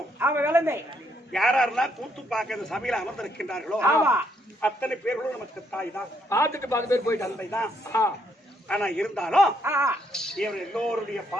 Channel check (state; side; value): normal; both; correlation 0.73